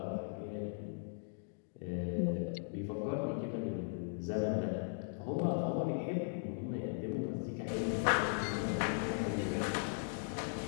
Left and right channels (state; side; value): silent; right; digital silence